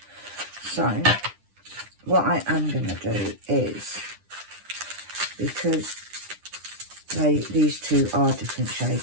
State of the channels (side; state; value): left; late; 10 ms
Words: So what I am going to do is, because these two are different